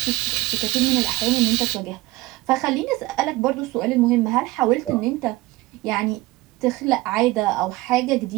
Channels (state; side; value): quieter; left; 19.5 dB